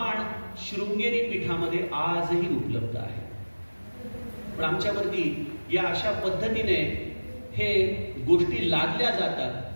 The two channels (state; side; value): inverted; both; correlation -1.00